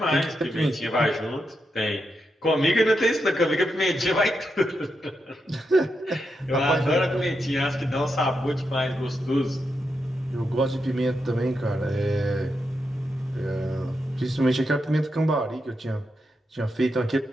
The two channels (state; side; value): normal; both; correlation 0.85